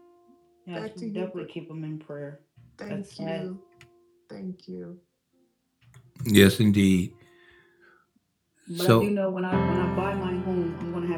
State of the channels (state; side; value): identical; both; correlation 1.00